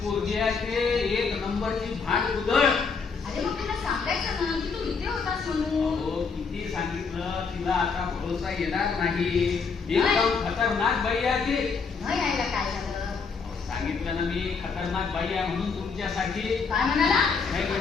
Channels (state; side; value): quieter; right; 5.2 dB